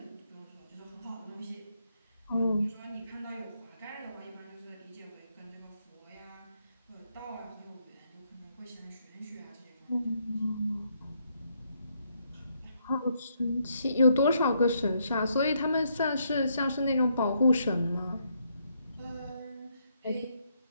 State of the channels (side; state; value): both; inverted; correlation -0.75